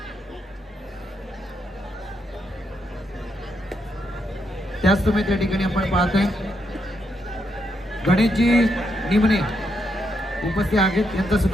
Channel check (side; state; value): both; normal; correlation 0.79